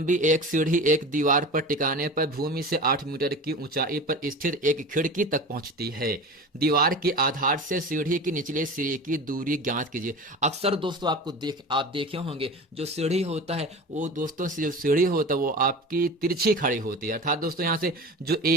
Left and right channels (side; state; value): both; normal; correlation 0.33